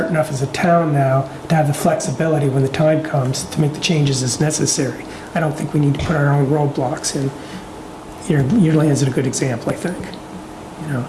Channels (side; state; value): both; identical; correlation 1.00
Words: enough as a town now to have the flexibility when the time comes to make the changes as necessary. I don't think we need to put our own roadblocks in. Your land's a good example, I think,